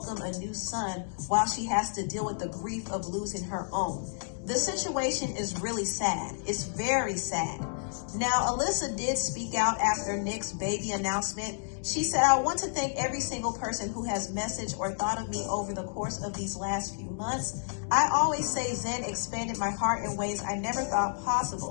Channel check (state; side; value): silent; right; digital silence